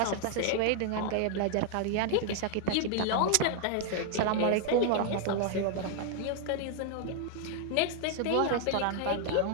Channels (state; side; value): different; both; correlation 0.00